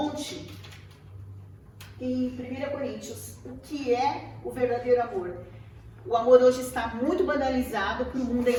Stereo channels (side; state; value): both; identical; correlation 1.00